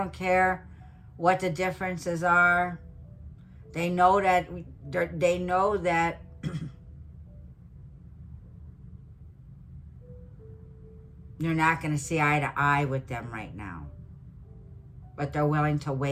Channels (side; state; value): both; identical; correlation 1.00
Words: care what the differences are. They know that you're not going to see eye to eye with them right now. But they're willing to